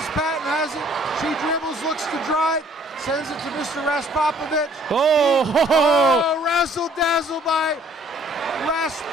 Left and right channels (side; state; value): both; normal; correlation 0.59